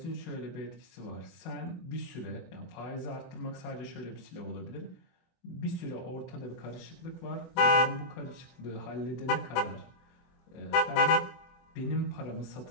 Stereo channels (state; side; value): late; right; 24 ms